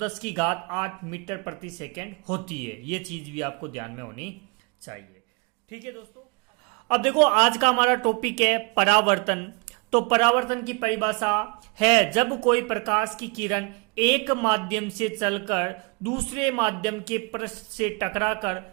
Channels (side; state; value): left; quieter; 30.8 dB